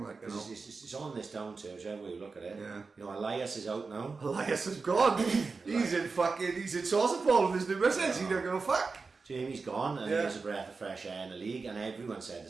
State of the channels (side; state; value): left; quieter; 4.4 dB